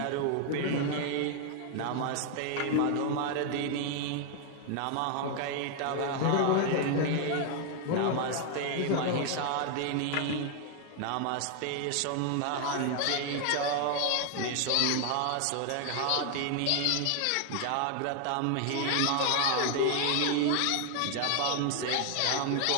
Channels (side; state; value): both; different; correlation 0.00